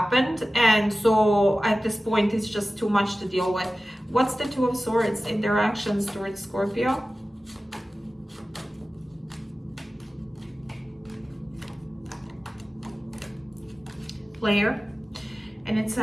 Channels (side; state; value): both; normal; correlation 0.96